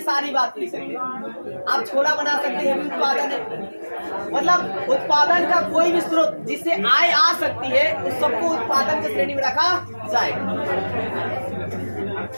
सारी बात लिख सकते हैं। आप छोला बना सकते हैं, उत्पादन है। मतलब उत्पादन का कोई भी स्रोत जिससे आय आ सकती है उस सबको उत्पादन की श्रेणी में रखा जाएगा।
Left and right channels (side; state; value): both; inverted; correlation -1.00